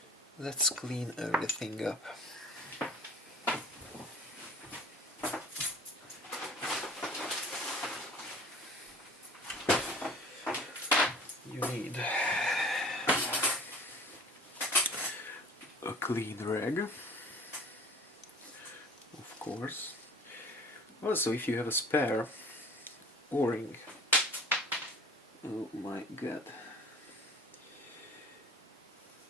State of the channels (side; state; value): both; normal; correlation 0.45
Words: Let's clean everything up. You need a clean rag, of course. Also, if you have a spare O-ring, oh my god,